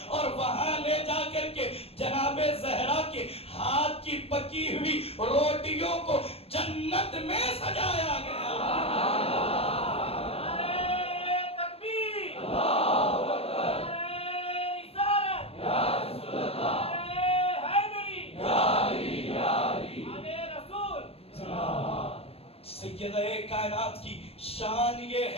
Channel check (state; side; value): late; right; 0.28 ms